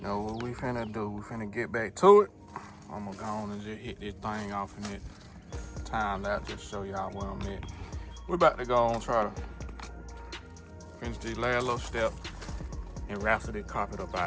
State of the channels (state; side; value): identical; both; correlation 1.00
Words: know what we finna do? We finna get back to it. I'm gonna go on and just hit this thing off in it. Time lapse just show y'all where I'm at. We're about to go on try to finish this last little step and wrestle this carpet up